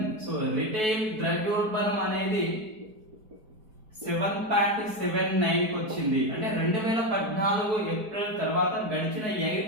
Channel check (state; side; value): late; left; 4.6 ms